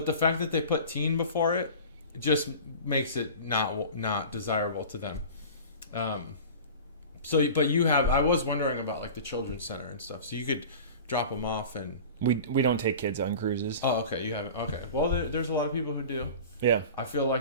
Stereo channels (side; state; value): both; inverted; correlation -0.37